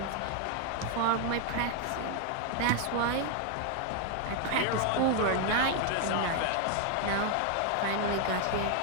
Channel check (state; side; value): different; both; correlation 0.00